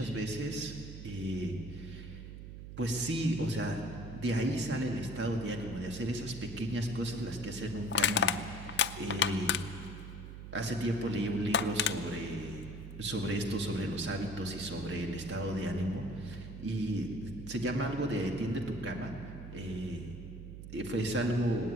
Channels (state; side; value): noise; right; hum, 10 dB below the sound